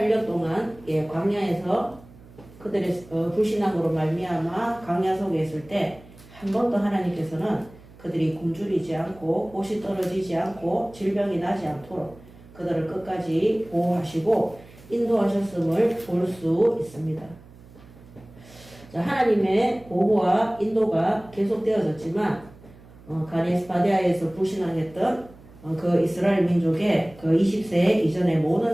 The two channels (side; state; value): right; noise; hum, 22 dB below the sound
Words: 동안 광야에서 그들의 불신앙으로 말미암아 광야 속에 있을 때 한 번도 하나님께서는 그들이 굶주리지 않고 옷이 떨어지지 않고 질병이 나지 않도록 그들을 끝까지 보호하시고 인도하셨음을 볼 수 있습니다. 자, 하나님의 보호와 인도가 계속되어졌지만 가데스 바네아에서 불신앙했던 그 이스라엘 민족의 그 20세 이전의